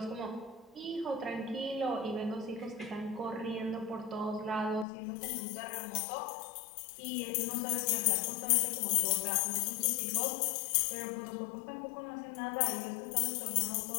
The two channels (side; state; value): right; drops out; at 4.9 s